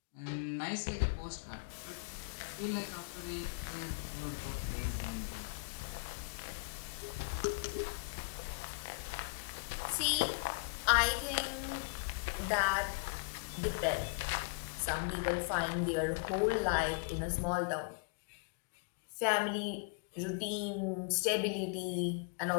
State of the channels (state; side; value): quieter; right; 36.2 dB